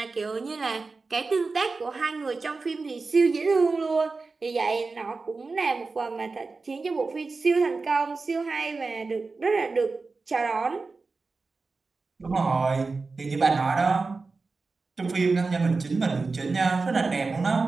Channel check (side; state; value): left; quieter; 4.0 dB